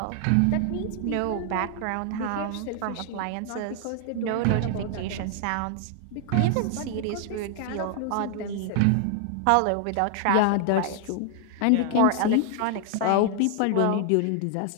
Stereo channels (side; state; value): both; different; correlation 0.00